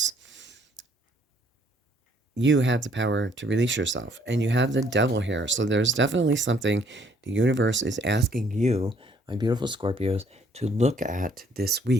You have the power to release yourself, and you have the Devil here. So there's definitely something the universe is asking you, my beautiful Scorpios, to look at this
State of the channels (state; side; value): normal; both; correlation 0.63